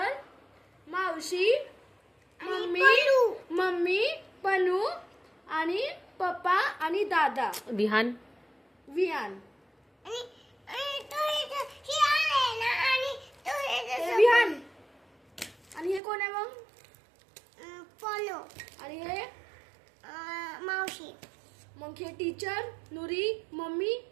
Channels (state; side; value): drops out; left; at 16.0 s